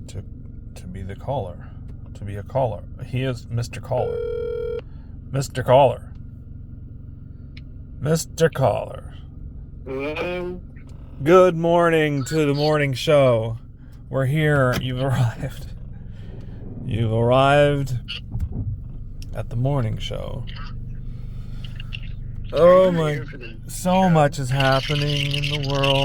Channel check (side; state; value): both; identical; correlation 1.00